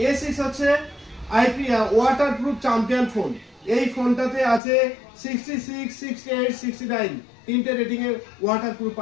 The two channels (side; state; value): right; drops out; at 4.6 s